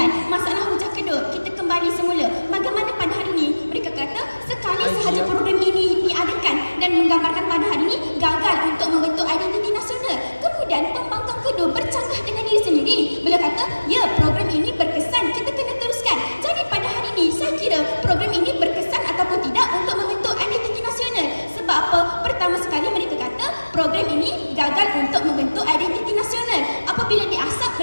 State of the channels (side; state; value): both; inverted; correlation -1.00